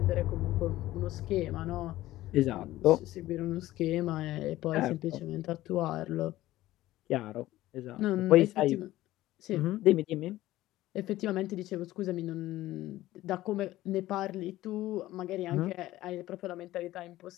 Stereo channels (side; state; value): right; quieter; 15.9 dB